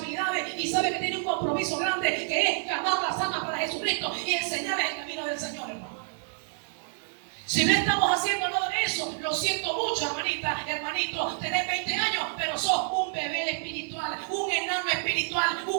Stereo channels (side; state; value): left; silent; digital silence